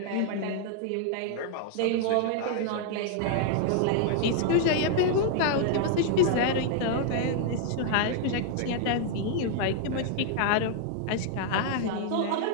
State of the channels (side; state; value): both; different; correlation 0.00